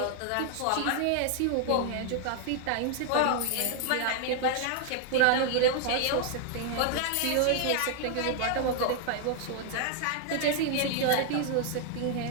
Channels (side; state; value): both; different; correlation 0.00